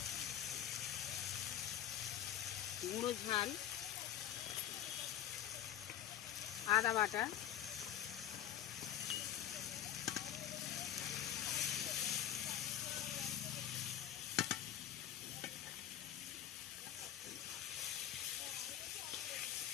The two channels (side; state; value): right; quieter; 11.1 dB